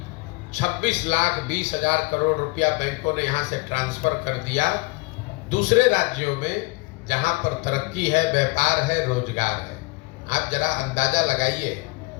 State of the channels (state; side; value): quieter; right; 26.0 dB